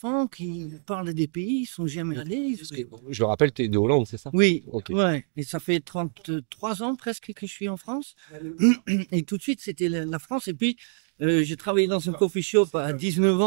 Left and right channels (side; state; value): left; silent; 61 dB below the other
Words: qui parlent des pays, ils sont jamais allés. Je le rappelle, tu es de Hollande, c'est ça? Oui, Ok. ouais. Et ça fait 33 ans presque que je suis en France. Et tout de suite, c'était la France. Et puis, j'ai travaillé dans un coffee shop à 19